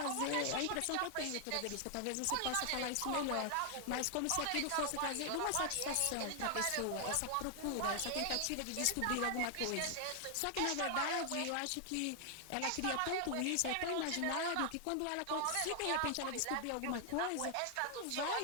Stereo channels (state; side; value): different; both; correlation 0.00